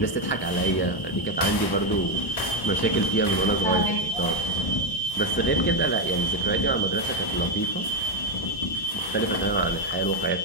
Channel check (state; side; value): late; right; 1.1 ms